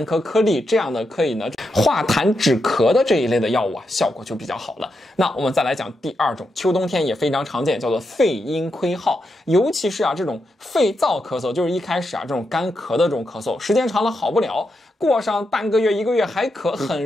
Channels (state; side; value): normal; both; correlation 0.85